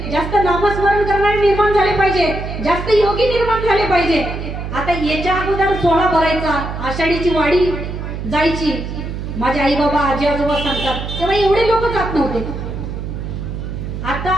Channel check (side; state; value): right; noise; hum, 6 dB below the sound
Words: जास्त नामस्मरण करणारे निर्माण झाले पाहिजे, जास्त योगी निर्माण झाले पाहिजे. आता याच्या अगोदर सोहळा भरायचा, आषाढीची वाडी जायची, माझे आई बाबा आजी आजोबा सांगतात, तेव्हा एवढे लोक जात नव्हते. आता